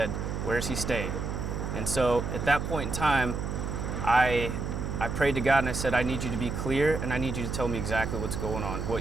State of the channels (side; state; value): right; noise; hum, 3 dB below the sound